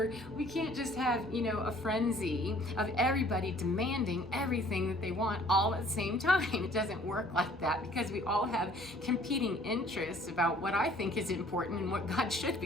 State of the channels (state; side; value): normal; both; correlation 0.56